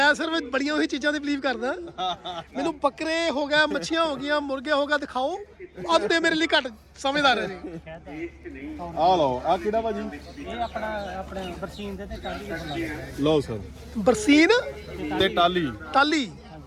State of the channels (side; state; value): both; identical; correlation 1.00